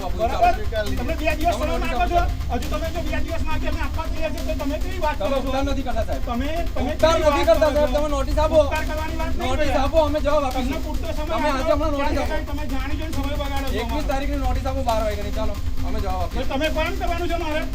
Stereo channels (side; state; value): both; identical; correlation 1.00